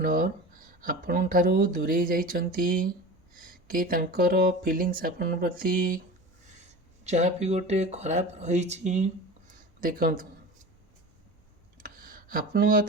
आपण ठारू दूरे जाइचंती कि तांकर फीलिंग्स आपण प्रति जहाँ भी गोटे खराब रही देखु आपण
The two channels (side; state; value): both; normal; correlation 0.33